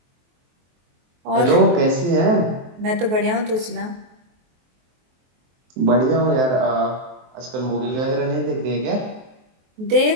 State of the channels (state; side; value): late; left; 23 ms